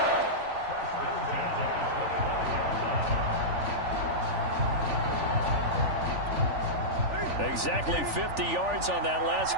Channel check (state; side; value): late; left; 3.4 ms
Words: Exactly 50 yards on that last